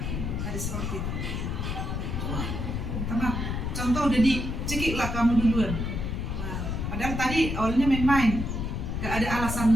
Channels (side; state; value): left; noise; rumble, 2 dB below the sound